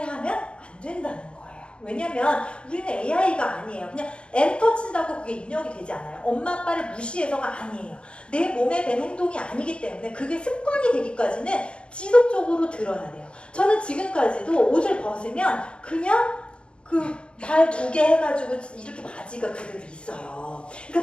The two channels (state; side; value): late; right; 0.057 ms